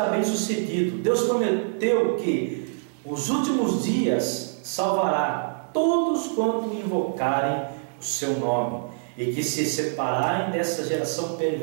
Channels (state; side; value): silent; left; digital silence